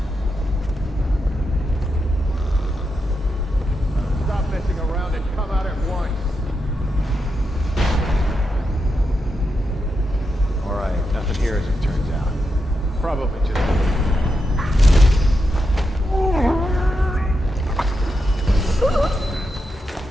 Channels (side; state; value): both; normal; correlation 0.86